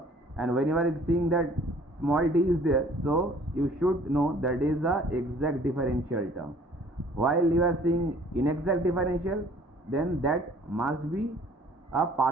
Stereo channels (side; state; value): both; normal; correlation 0.54